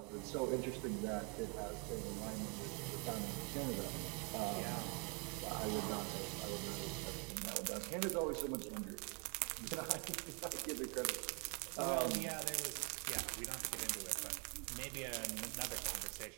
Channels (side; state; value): left; quieter; 34.6 dB